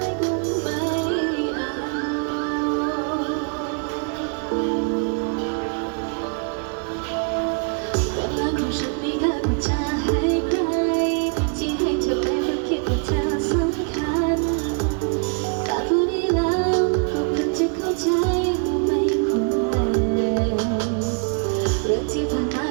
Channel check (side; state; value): left; quieter; 38.9 dB